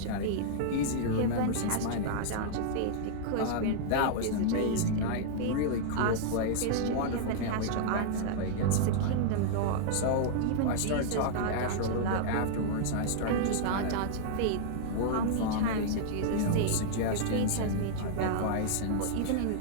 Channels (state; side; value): different; both; correlation -0.01